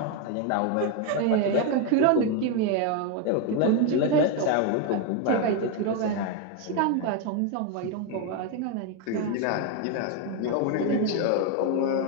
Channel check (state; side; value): different; both; correlation 0.02